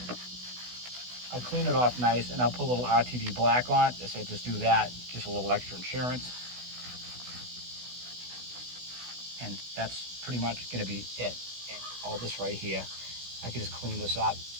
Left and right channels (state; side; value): late; left; 16 ms